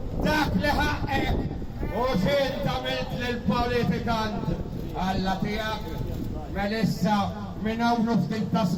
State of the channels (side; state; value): both; identical; correlation 1.00